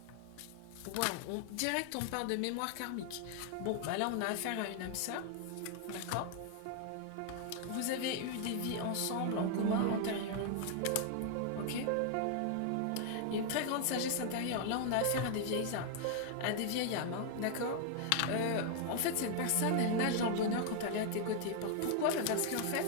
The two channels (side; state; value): both; different; correlation 0.00